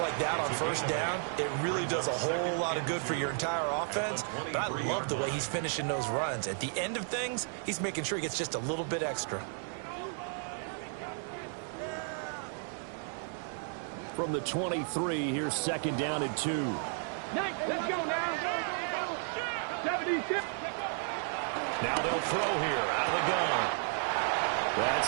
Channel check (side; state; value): left; silent; 56 dB below the other